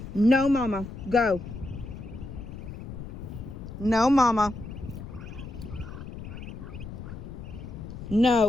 No, Mama. Go. No, Mama.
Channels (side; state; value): left; noise; rumble, 10 dB below the sound